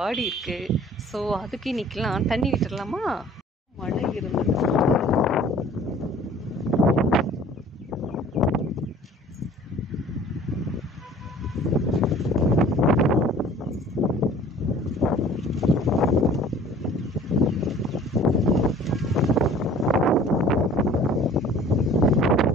இருக்குது. ஸோ அதுக்கு இன்னைக்கெலாம் தண்ணி விட்டுடலாமா? மழை இருந்தது.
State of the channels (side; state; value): both; normal; correlation 0.50